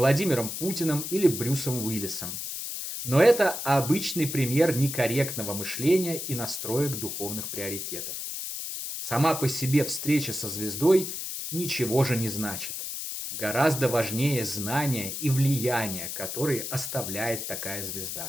Путиным или Брюсом Уиллисом. Но это обычный пример некорректного мышления и настроек духовных приоритетов. Сама по себе встреча со звездой ничего же не значит. Гораздо важнее знания и влияние, которые оставляет такая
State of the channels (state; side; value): noise; left; hiss, 5 dB below the sound